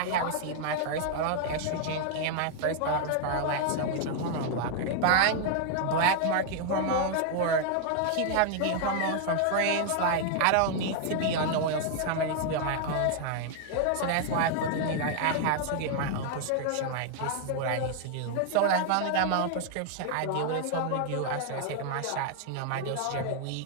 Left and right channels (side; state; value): both; different; correlation 0.00